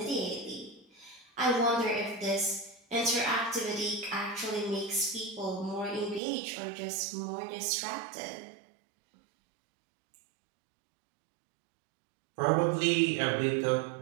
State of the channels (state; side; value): drops out; left; at 6.2 s